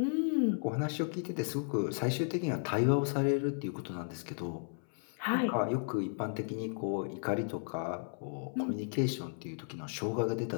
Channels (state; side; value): silent; right; 55 dB below the other